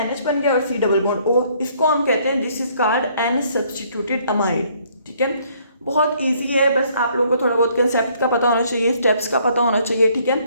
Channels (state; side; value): inverted; both; correlation -0.64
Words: NH बन गया और C डबल बॉन्ड O, इसको हम कहते हैं this is called N substituted amide, ठीक है। बहुत इजी है, बस आप लोगों को थोड़ा बहुत कंसेप्ट का पता होना चाहिए, स्टेप्स का पता होना चाहिए, ठीक है।